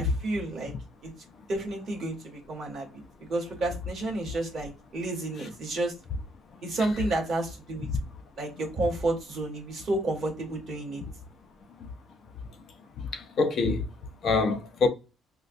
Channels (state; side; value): normal; both; correlation 0.69